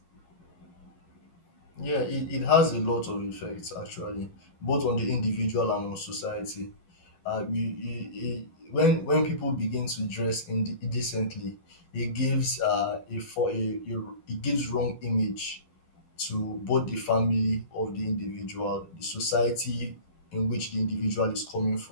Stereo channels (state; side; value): late; right; 11 ms